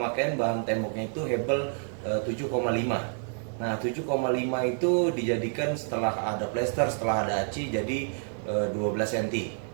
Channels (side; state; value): left; silent; 59 dB below the other